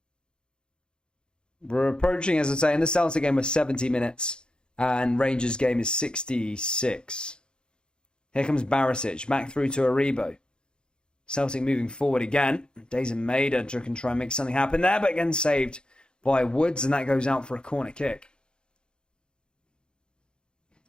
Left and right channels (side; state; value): right; late; 0.049 ms